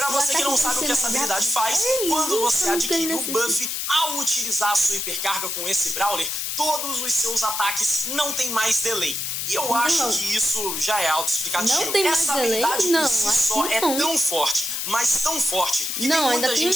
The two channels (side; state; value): left; noise; hiss, 2 dB below the sound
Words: você que não sabe o que essa habilidade faz, quando você adquire o buff, ao utilizar a sua hipercarga com esse Brawler, todos os seus ataques não tem mais delay. E eu acho que isso já é autoexplicativo. Essa habilidade por si só é tão forte, mas tão forte, que tem muita